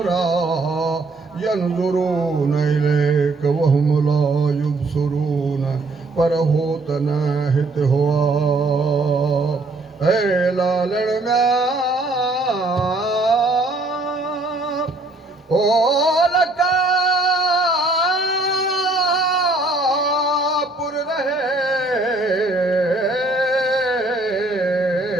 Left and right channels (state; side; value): quieter; left; 3.1 dB